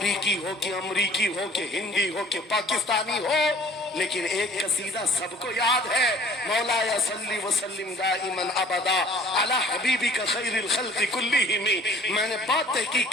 ہو کہ امریکی ہو کہ ہندی ہو کہ پاکستانی ہو، لیکن ایک قصیدہ سب کو یاد ہے، مولاي صلی وسلم دائما ابدا علی حبیبک خیر الخلق کلہم۔ میں نے بات تحقیق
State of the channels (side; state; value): both; normal; correlation 0.52